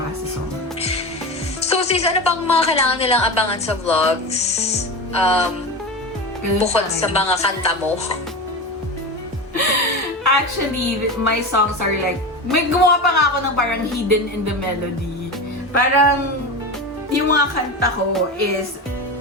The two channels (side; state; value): both; normal; correlation 0.24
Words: Sa song. So, sis, ano pang mga kailangan nilang abangan sa vlogs? Ganun Bukod pa sa rin. mga kanta mo. Actually, my songs are like, may gumawa pa nga ako ng parang hidden in the melody. Parang, yung mga kanta ko is